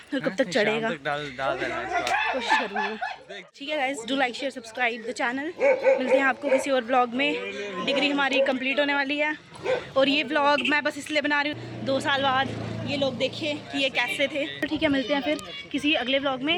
और कब तक चढ़ेगा, कोशिश करूँगी। ठीक है guys, do like share subscribe the channel. मिलते हैं आपको किसी और ब्लॉग में। डिग्री हमारी कंप्लीट होने वाली है और ये ब्लॉग मैं बस इसलिए बना रही हूँ 2 साल बाद ये लोग देखें कि ये कैसे थे। तो ठीक है, मिलते हैं फिर किसी अगले व्लॉग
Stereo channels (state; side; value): identical; both; correlation 1.00